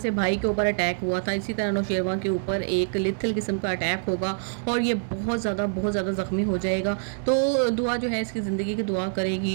भाई के ऊपर अटैक हुआ था, इसी तरह नौशेरवा के ऊपर एक लिथल किस्म का अटैक होगा और ये बहुत ज़्यादा जख्मी हो जाएगा। तो दुआ जो है इसकी ज़िंदगी की दुआ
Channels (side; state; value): left; silent; digital silence